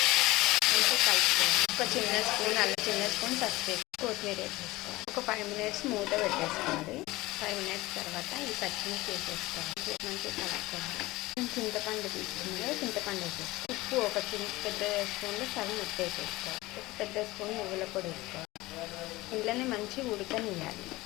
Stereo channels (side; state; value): right; quieter; 19.8 dB